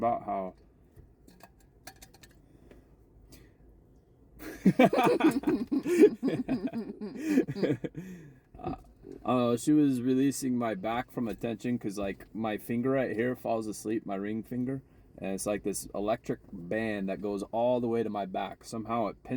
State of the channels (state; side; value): identical; both; correlation 1.00